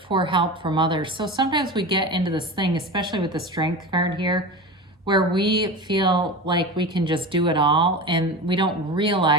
help from others. So sometimes we get into this thing, especially with the strength card here, where we feel like we can just do it all, and we don't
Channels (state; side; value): normal; both; correlation 0.28